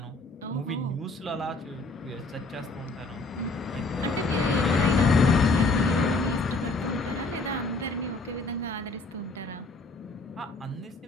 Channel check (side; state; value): right; quieter; 3.2 dB